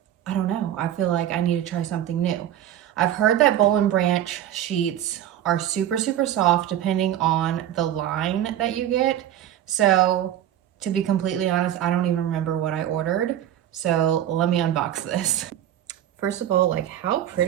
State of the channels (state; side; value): quieter; left; 11.6 dB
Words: I don't know, I feel like I need to try something new. I've heard that Boll and Branch sheets are super, super soft depending on the line that you get. So to be completely honest, I don't even remember what I ordered. So let me unbox this. First of all, like, how